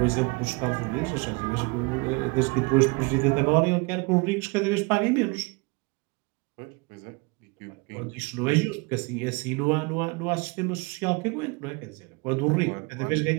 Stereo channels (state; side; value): quieter; left; 28.1 dB